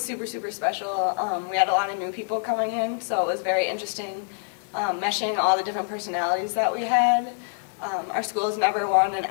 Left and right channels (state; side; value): silent; right; digital silence